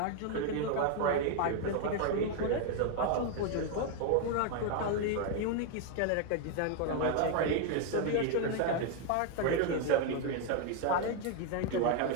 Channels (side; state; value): both; different; correlation 0.00